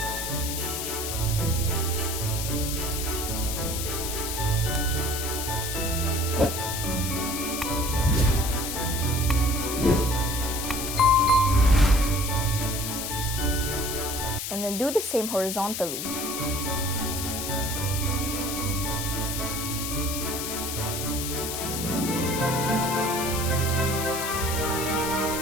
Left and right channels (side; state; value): left; noise; hiss, 4 dB below the sound